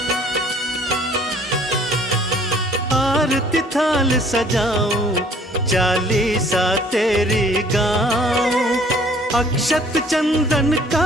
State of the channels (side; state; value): both; normal; correlation 0.56